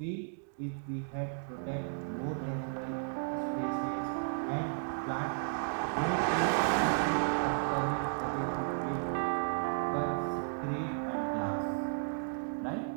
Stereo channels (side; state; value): left; silent; digital silence